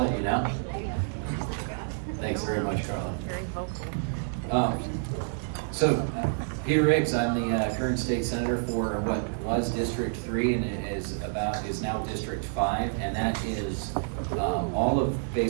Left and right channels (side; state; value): left; silent; digital silence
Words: you know. Thanks very much, Carla. Very vocal. Peter Riggs, I'm the current state senator for what was District 3 and is now District 5, and that is all of